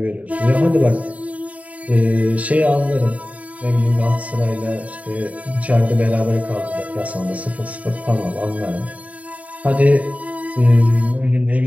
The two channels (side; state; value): left; late; 0.069 ms